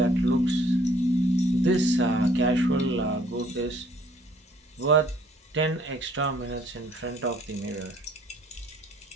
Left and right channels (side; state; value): both; normal; correlation 0.60